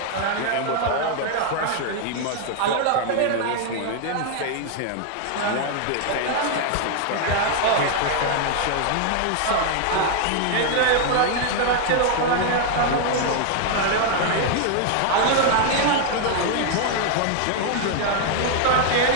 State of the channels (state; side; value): different; both; correlation 0.00